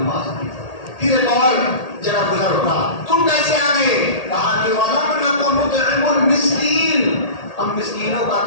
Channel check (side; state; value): right; late; 1.8 ms